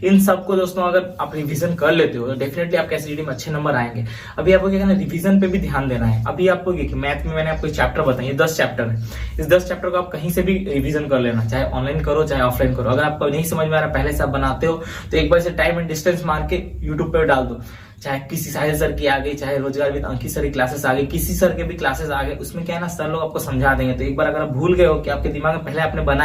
इन सबको दोस्तों अगर आप रिविजन कर लेते हो तो डेफिनेटली आपके एसएसजीडी में अच्छे नंबर आएंगे। अभी आपको क्या करना है, रिवीजन पे भी ध्यान देना है। अभी आपको मैथ में मैंने आपको चैप्टर बताए, 10 चैप्टर है, इस 10 चैप्टर को आप कहीं से भी रिवीजन कर लेना, चाहे ऑनलाइन करो चाहे ऑफलाइन करो। अगर आपको नहीं समझ में आ रहा, पहले से आप बनाते हो तो एक बार से टाइम एंड डिस्टेंस मार के यूट्यूब पे डाल दो, चाहे किसी साहिल सर की आ गई, चाहे रोजगार विद अंकित सर की क्लासेस आ गई, किसी सर के भी क्लासेस आ गए, उसमें क्या है ना, सर लोग आपको समझा देंगे। तो एक बार अगर आप भूल गए हो कि आपके दिमाग में पहले आपने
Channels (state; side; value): identical; both; correlation 1.00